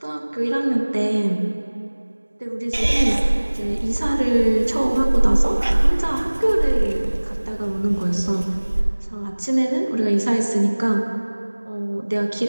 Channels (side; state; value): both; inverted; correlation -1.00